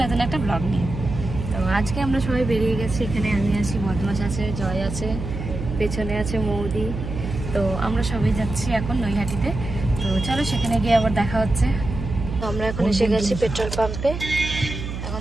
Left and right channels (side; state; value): right; noise; hum, 6 dB below the sound